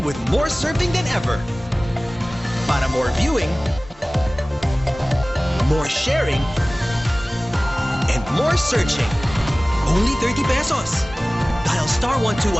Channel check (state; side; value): normal; both; correlation 0.98